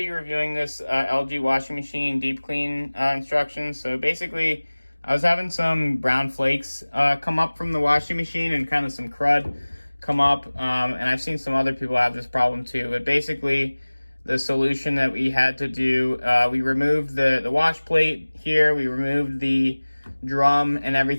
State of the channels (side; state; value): both; inverted; correlation -1.00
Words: reviewing this LG washing machine deep clean instructions. So basically, I was having some brown flakes come up from the washing machine and kind of some crud come up. And I've seen some other people have this problem too. But basically, the solution that we had to do, we removed the wash plate here, we removed the drum and